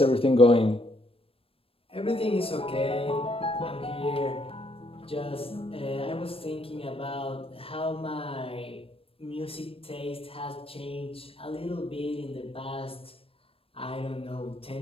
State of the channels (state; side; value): late; right; 0.27 ms